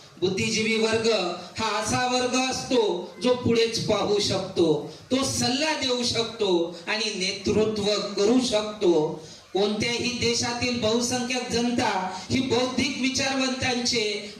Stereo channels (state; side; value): identical; both; correlation 1.00